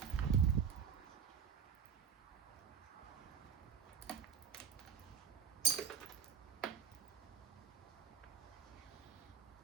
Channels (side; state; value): left; quieter; 7.5 dB